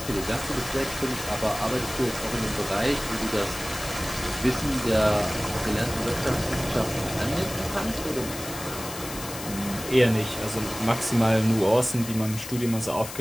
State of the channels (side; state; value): left; noise; hiss, 10 dB below the sound